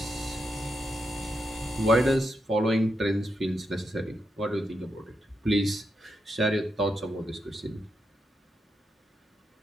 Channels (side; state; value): both; normal; correlation 0.84